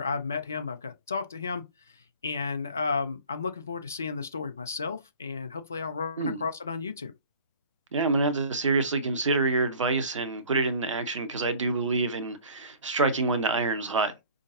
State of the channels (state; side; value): inverted; both; correlation -0.47